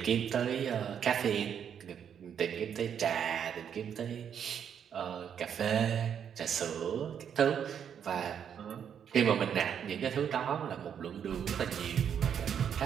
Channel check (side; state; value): left; quieter; 8.3 dB